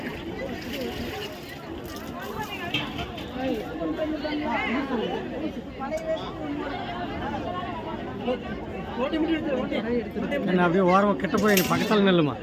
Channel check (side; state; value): both; identical; correlation 1.00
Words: என்ன அப்படியே ஓரமாக கிட்ட போய் நீ பக்கத்தால் நெல்லுமா,